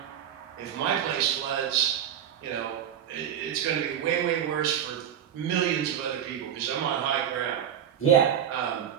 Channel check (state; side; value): quieter; left; 9.4 dB